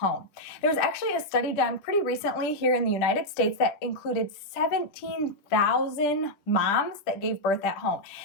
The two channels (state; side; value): late; right; 10 ms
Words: There was actually a study done pretty recently here in the United States that included 17,000 moms that gave birth at home.